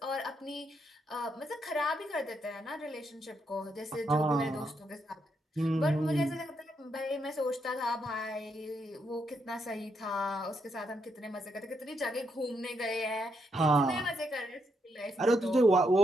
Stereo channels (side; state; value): both; normal; correlation 0.78